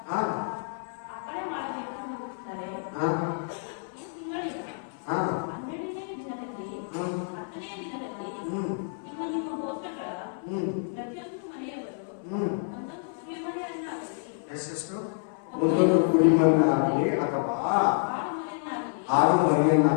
ಎಷ್ಟೆಷ್ಟು ಒಂದೊಂದು ಕುರಿಮನ್ನಾಗಲಿ ಅಥವಾ ಆಡು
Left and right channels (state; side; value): silent; right; 59 dB below the other